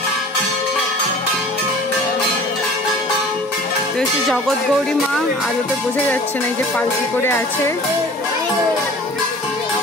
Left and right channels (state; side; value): normal; both; correlation 0.45